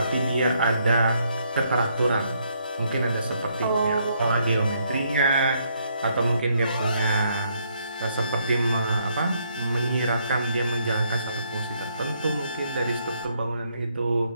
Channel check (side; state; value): both; inverted; correlation -0.72